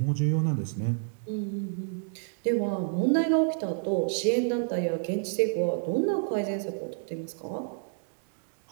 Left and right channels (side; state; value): left; silent; digital silence